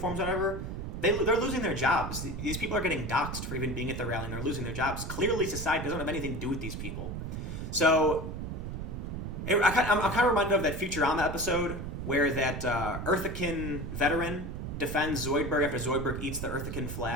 or whatever, they're losing their jobs. These people are getting doxxed for even being at the rally, and they're losing their jobs. Clearly, society doesn't have anything to do with these people. So, I'm kind of reminded of that Futurama episode where that Earthican veteran defends Zoidberg after Zoidberg eats the Earthican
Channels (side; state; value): right; noise; rumble, 6 dB below the sound